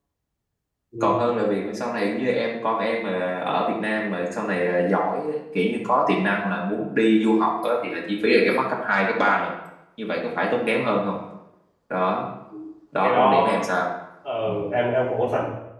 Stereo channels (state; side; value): identical; both; correlation 1.00